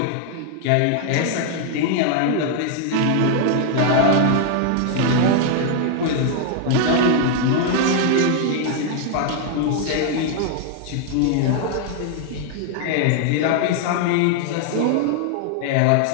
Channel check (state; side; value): different; both; correlation 0.00